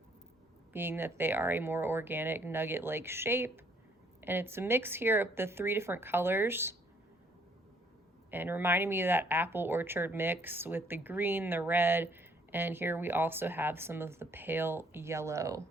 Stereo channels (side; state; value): both; normal; correlation 0.64